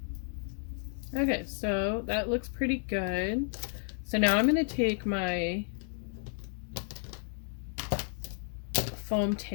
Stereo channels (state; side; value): silent; right; 56 dB below the other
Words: Okay, so that looks pretty good. So now I'm going to take my foam